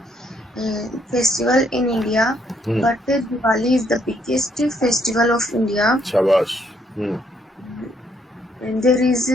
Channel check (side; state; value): both; normal; correlation 0.70